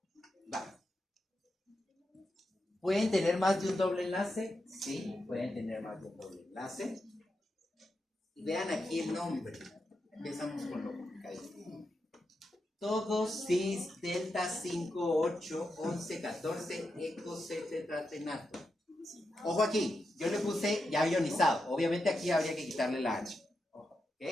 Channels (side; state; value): both; normal; correlation 0.87